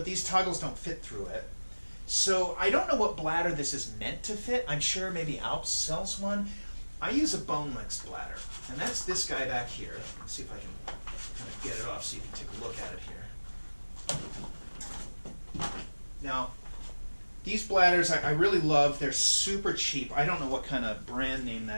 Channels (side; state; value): both; inverted; correlation -1.00